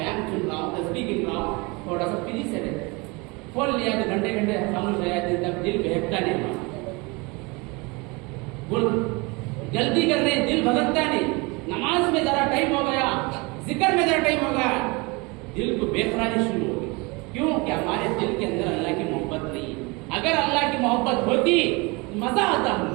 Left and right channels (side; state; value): left; quieter; 26.9 dB